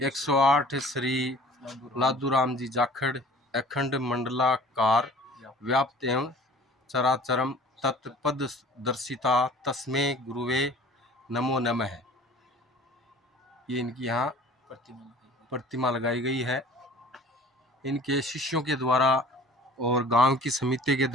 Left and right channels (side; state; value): both; normal; correlation 0.47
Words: श्री लादूराम जी जाखड़ अखंड मंडलाकार व्याप्त एवं चराचरम तत्पद दर्शिता तस्मे गुरुवे नमो नमः। ये इनकी यहाँ प्रतिमा लगाई गई है। इनके शिष्यों के द्वारा और गांव की समिति के